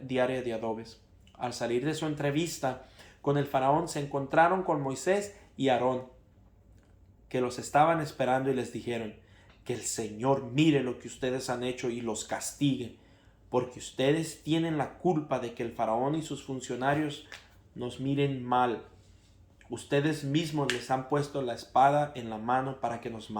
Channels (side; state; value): both; identical; correlation 1.00